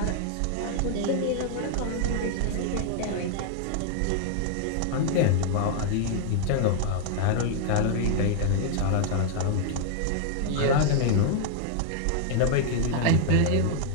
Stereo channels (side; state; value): both; different; correlation 0.00